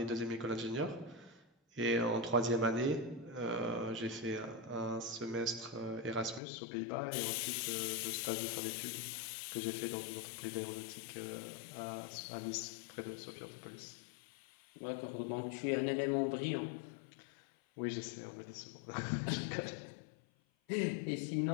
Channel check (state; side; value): drops out; right; at 6.4 s